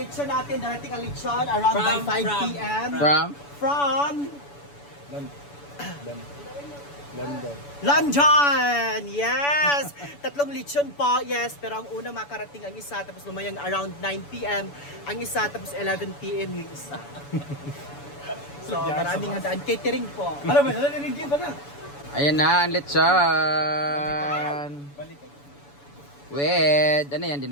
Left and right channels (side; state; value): right; late; 7.0 ms